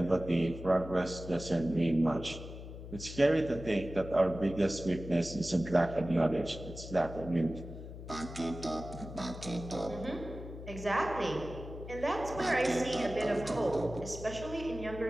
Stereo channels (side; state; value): left; noise; hum, 11 dB below the sound